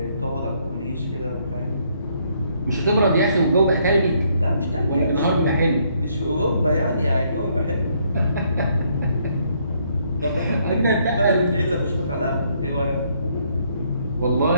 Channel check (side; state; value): both; inverted; correlation -0.70